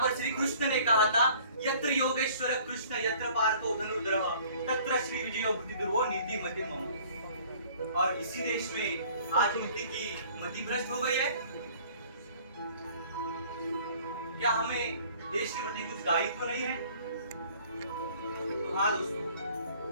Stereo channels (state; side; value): inverted; both; correlation -0.53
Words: पर श्री कृष्ण ने कहा था, यत्र योगेश्वर कृष्ण यत्र पार्थो धनुर्धरः तत्र श्री विजयो बुद्धिर्भो नीति मति मम। और इसी देश में आज नीति की मति भ्रष्ट हो गई है। क्या हमें देश के प्रति कुछ दायित्व नहीं है? तो हाँ दोस्तों,